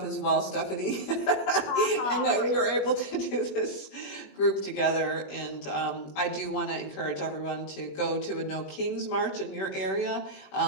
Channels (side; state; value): right; late; 21 ms